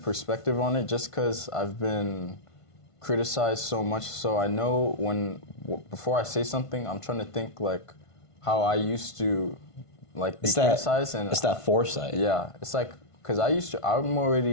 perspective on it just because I've been criticized so much. So I know before I say something, I'm trying to think like, how I used to like be criticized, and it's that foresight. Yeah, it's like because I'm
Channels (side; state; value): right; late; 1.5 ms